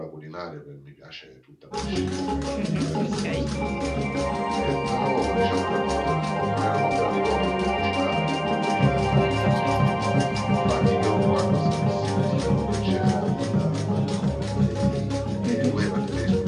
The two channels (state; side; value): identical; both; correlation 1.00